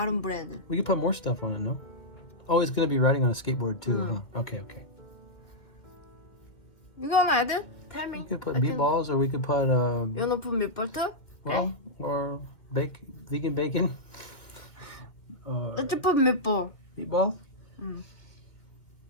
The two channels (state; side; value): late; right; 2.0 ms